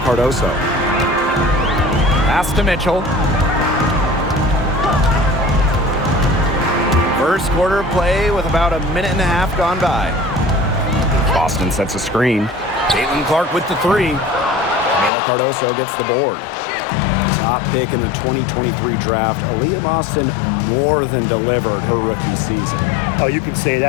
Pass to Mitchell. First quarter of play with about a minute and a half gone by. Boston sets a screen. Caitlin Clark with the 3. Camila Cardoso gets the board. Top pick in the 2023 draft, Aaliyah Boston more than delivered her rookie season. Oh, you can say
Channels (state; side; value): drops out; right; at 15.1 s